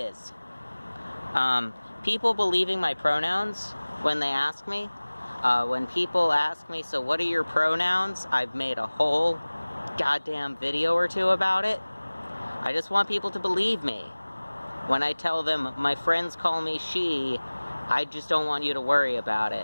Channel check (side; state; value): both; inverted; correlation -1.00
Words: People believing my pronouns when they ask me. When people ask me, so what are your pronouns? I've made a whole goddamn video or two about it. I just want people to believe me. When I tell them my friends call me she, I just don't want you to worry about